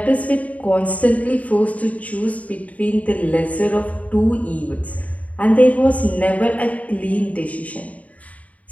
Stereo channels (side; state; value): right; late; 0.069 ms